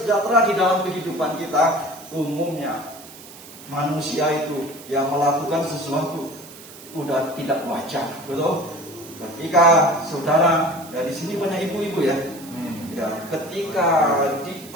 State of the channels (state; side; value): noise; right; hiss, 18 dB below the sound